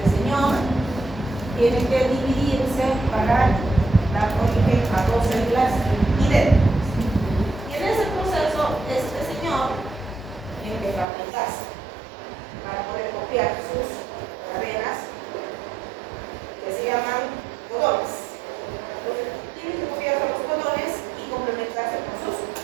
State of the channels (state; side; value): drops out; left; at 11.1 s